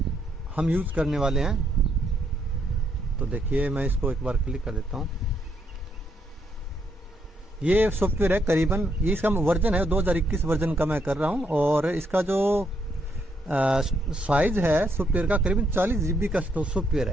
हम यूज़ करने वाले हैं, तो देखिए मैं इसको एक बार क्लिक कर देता हूँ। ये सॉफ्टवेयर है करीबन, ये इसका वर्जन है 2021 वर्जन का मैं कर रहा हूँ, और इसका जो साइज है सॉफ्टवेयर का करीबन 40 GB का सॉफ्टवेयर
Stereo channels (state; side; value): normal; both; correlation 0.75